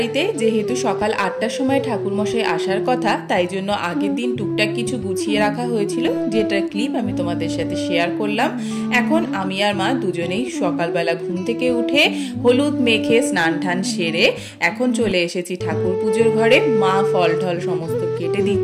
যেহেতু সকাল 8টার সময় ঠাকুরমশাই আসার কথা, তাই জন্য আগের দিন টুকটাক কিছু গুছিয়ে রাখা হয়েছিল, যেটার ক্লিপ আমি তোমাদের সাথে শেয়ার করলাম। এখন আমি আর মা দুজনেই সকালবেলা ঘুম থেকে উঠে হলুদ মেখে স্নান টান সেরে এখন চলে এসেছি ঠাকুর পুজোর ঘরে। মা ফল ঠল সমস্ত কেটে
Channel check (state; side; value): identical; both; correlation 1.00